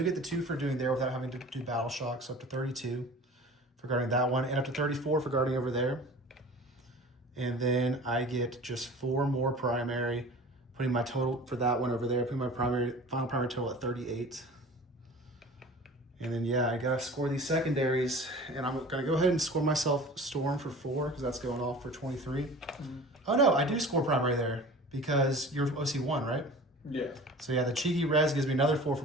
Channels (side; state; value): both; normal; correlation 0.41